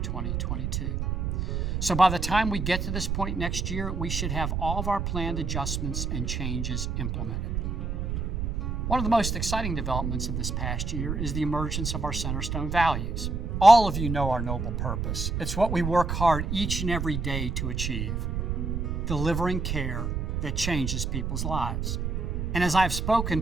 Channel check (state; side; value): noise; right; rumble, 1 dB below the sound